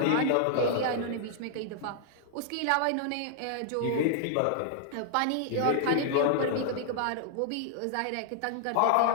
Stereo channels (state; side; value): different; both; correlation -0.01